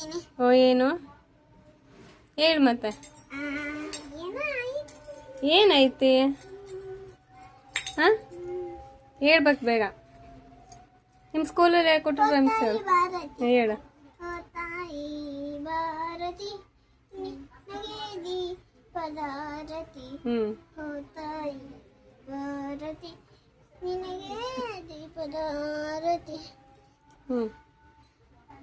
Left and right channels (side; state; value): both; identical; correlation 1.00